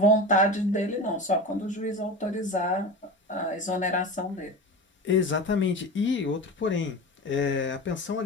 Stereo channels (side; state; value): both; normal; correlation 0.28